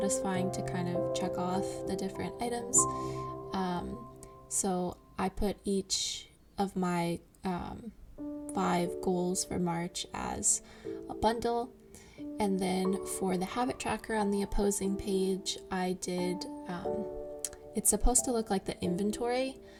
to kind of check off the different items. So I put each of my 5 goals for March as a bundle, and then for the habit tracker on the opposing page, I did it's supposed to look like the inventory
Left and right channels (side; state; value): both; identical; correlation 1.00